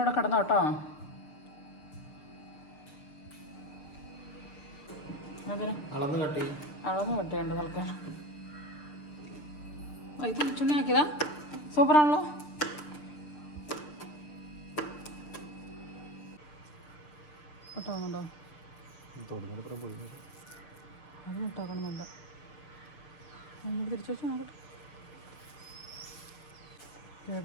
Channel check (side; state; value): right; late; 6.7 ms